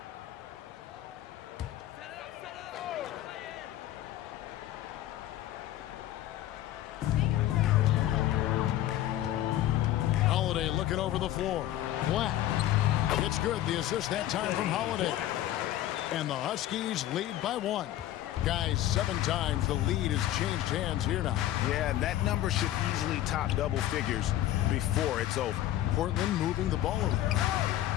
Holiday looking over the floor. Black. It's good. The assist that time from Holiday. And the Huskies lead by 1. Guys, 7 times the lead has changed hands here now. Yeah, that number should easily top double figures before it's over. Portland moving the ball around.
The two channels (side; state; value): right; quieter; 13.3 dB